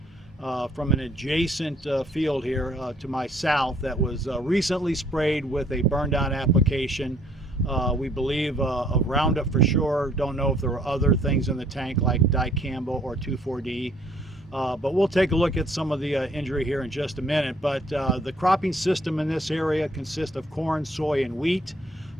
from an adjacent field here to my south that was recently sprayed with a burn down application. We believe of Roundup for sure. Don't know if there were other things in the tank like dicamba or 2,4-D. But we'll take a look at some of the injury here in just a minute. But the cropping system in this area consists of corn, soy, and wheat.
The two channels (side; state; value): both; normal; correlation 0.63